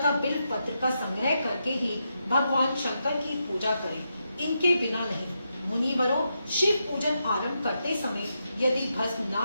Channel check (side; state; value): both; inverted; correlation -0.84